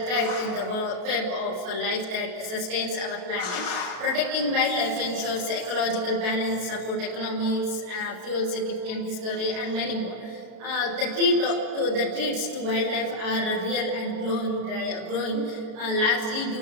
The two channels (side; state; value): left; late; 32 ms